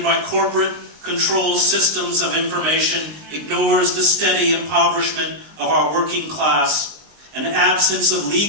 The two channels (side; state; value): left; late; 19 ms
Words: by corporate control systems of information, ignores the steady impoverishment of our working class and absence of